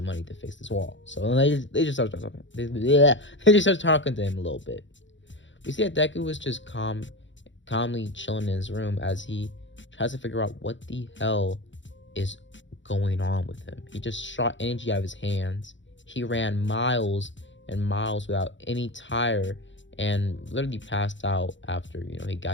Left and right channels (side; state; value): right; late; 0.54 ms